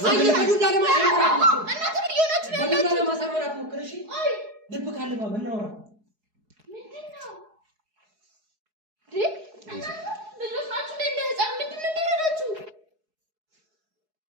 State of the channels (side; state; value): left; late; 4.7 ms